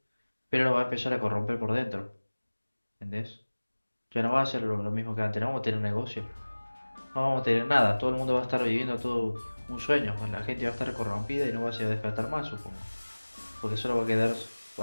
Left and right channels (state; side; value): inverted; both; correlation -1.00